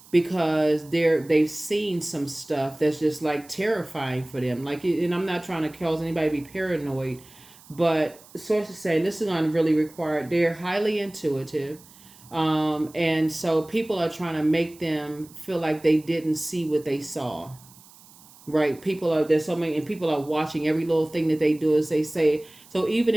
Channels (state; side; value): noise; right; hiss, 24 dB below the sound